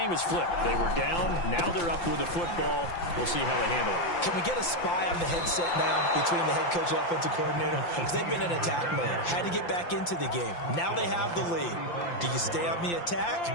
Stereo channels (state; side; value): late; right; 5.8 ms